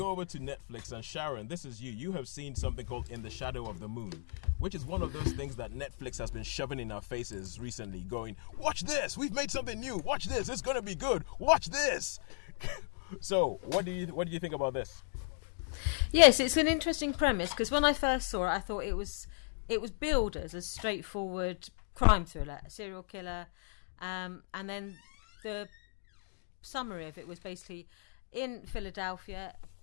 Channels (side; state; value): right; silent; digital silence